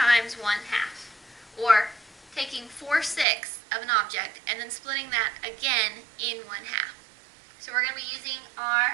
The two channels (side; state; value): left; drops out; at 3.2 s